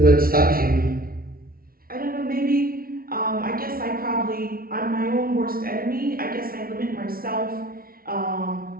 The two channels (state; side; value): late; left; 0.43 ms